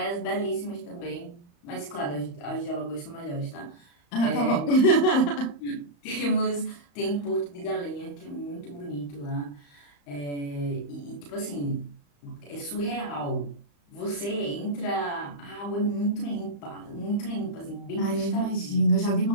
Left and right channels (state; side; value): late; right; 35 ms